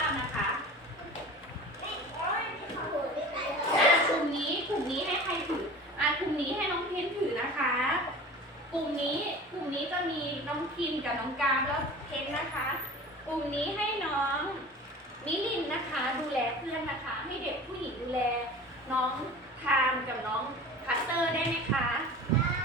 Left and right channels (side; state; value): both; normal; correlation 0.38